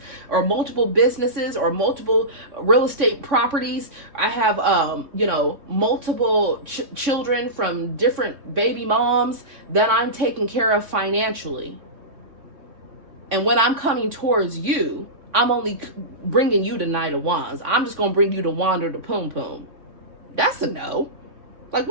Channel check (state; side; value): late; left; 3.5 ms